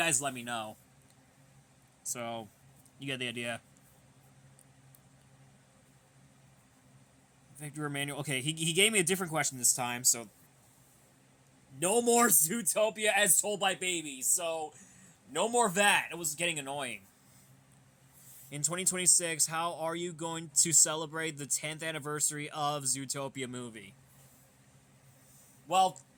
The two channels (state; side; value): identical; both; correlation 1.00